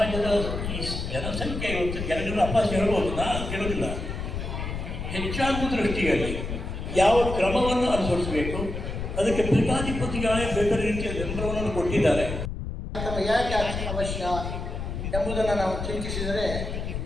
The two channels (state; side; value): noise; left; rumble, 5 dB below the sound